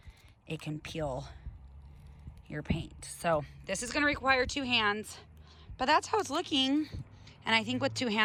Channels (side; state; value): both; identical; correlation 1.00